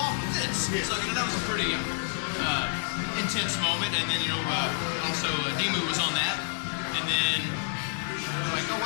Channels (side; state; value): right; silent; 59 dB below the other